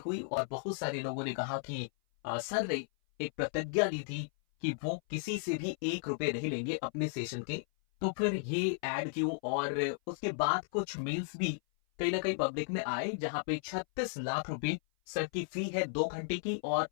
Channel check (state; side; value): silent; right; 55 dB below the other